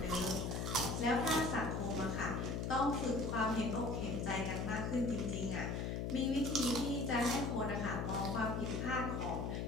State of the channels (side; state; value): left; noise; hum, 1 dB below the sound